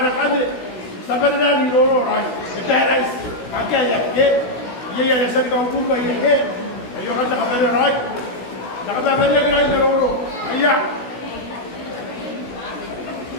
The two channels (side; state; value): right; late; 16 ms